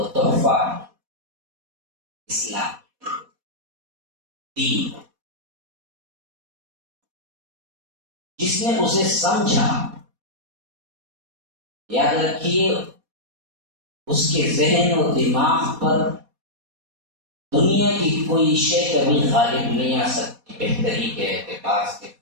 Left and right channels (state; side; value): late; left; 4.2 ms